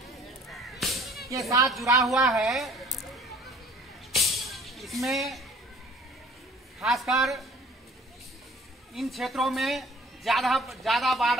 के साथ जुड़ा हुआ है, इसमें खासकर इन क्षेत्रों में ज्यादा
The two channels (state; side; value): normal; both; correlation 0.53